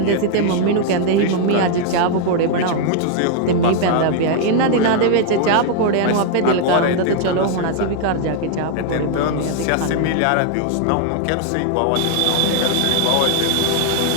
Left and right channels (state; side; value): different; both; correlation 0.00